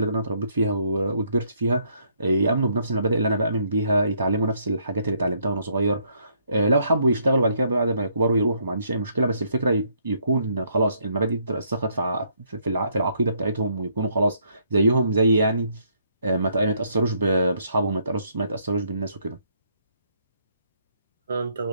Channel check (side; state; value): both; inverted; correlation -0.70